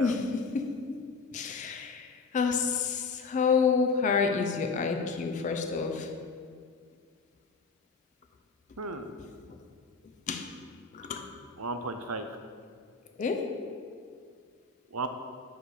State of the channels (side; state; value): right; quieter; 4.5 dB